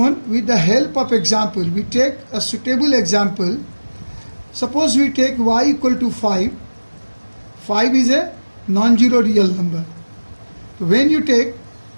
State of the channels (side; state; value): both; inverted; correlation -1.00